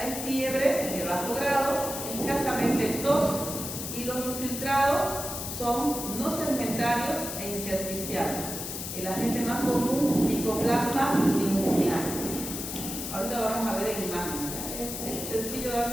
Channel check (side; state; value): left; noise; hiss, 6 dB below the sound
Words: fiebre de bajo grado, escasamente tos, y los infiltrados son no segmentarios e intersticiales. El agente más común, Mycoplasma pneumoniae. Ahorita lo vamos a ver en imagen. Es sencillo